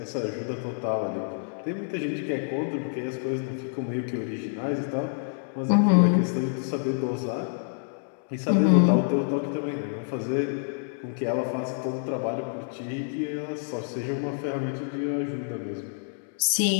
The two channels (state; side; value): silent; right; digital silence